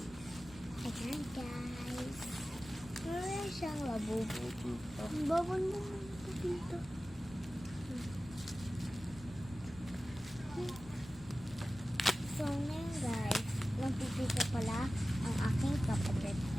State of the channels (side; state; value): left; noise; rumble, 20 dB below the sound